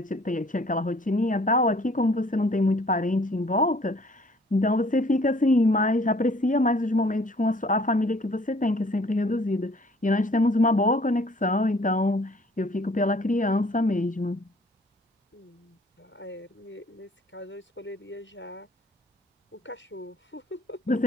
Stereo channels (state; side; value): normal; both; correlation 0.57